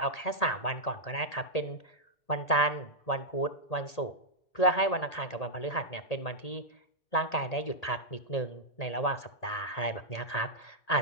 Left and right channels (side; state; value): right; late; 1.8 ms